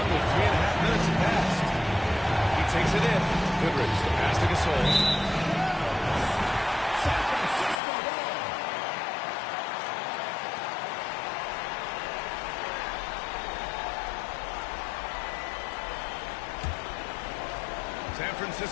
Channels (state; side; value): drops out; right; at 7.8 s